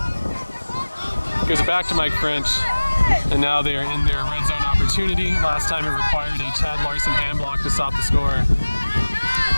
gives it back to Mike French, and now they are in their red zone opportunity. Last time it required a Chad Larson hand block to stop the score.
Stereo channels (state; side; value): inverted; both; correlation -1.00